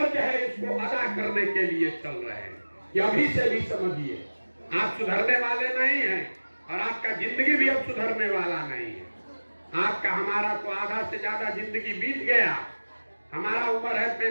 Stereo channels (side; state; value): both; inverted; correlation -1.00